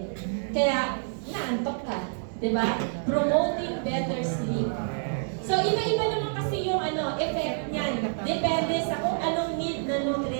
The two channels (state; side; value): silent; left; digital silence